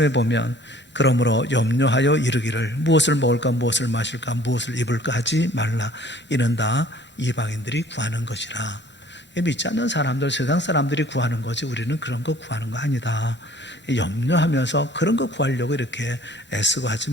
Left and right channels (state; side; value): normal; both; correlation 0.53